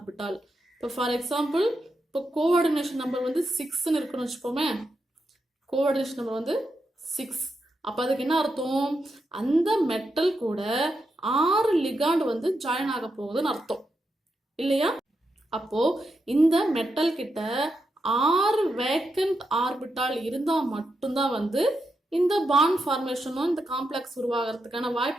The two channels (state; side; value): normal; both; correlation 0.85